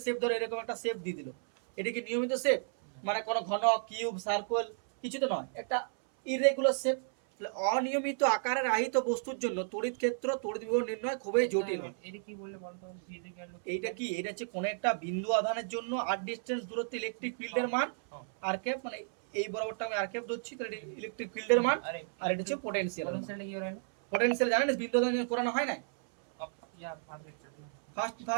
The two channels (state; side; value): silent; left; 56 dB below the other